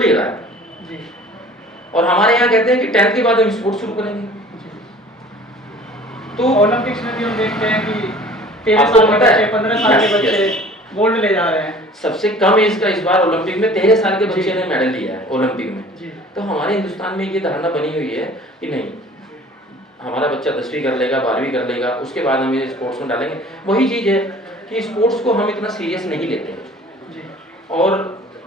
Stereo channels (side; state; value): both; normal; correlation 0.47